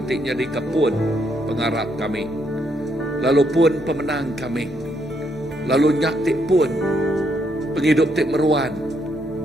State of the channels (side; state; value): both; normal; correlation 0.75